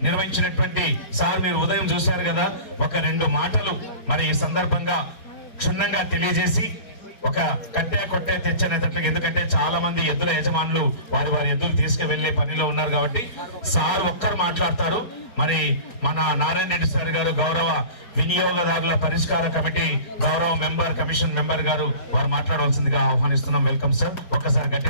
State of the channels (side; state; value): right; late; 4.3 ms